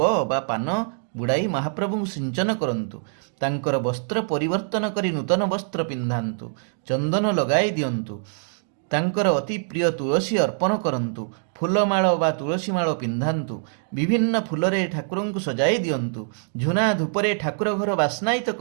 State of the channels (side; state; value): left; silent; digital silence